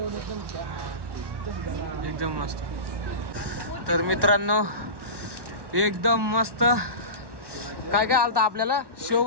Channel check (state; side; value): late; left; 1.1 ms